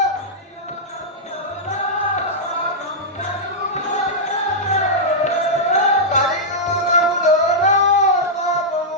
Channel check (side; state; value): both; normal; correlation -0.09